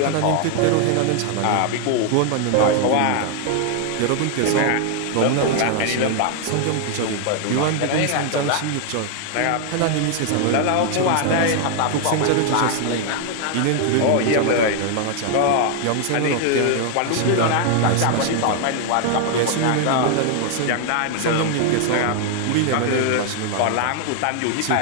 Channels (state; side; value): different; both; correlation 0.00